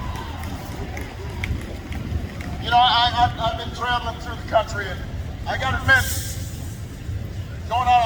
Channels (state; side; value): identical; both; correlation 1.00